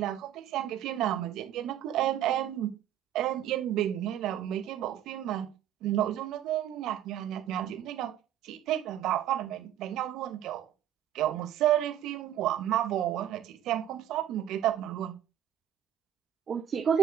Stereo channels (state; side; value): quieter; left; 11.3 dB